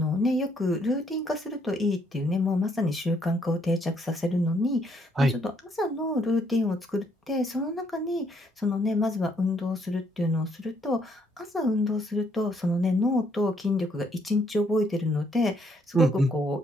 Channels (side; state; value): both; normal; correlation 0.70